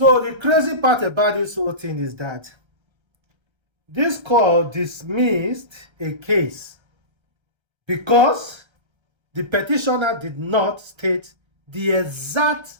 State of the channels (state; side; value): late; left; 1.3 ms